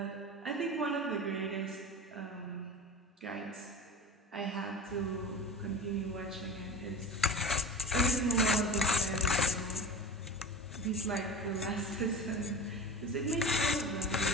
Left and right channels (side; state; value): both; normal; correlation 0.35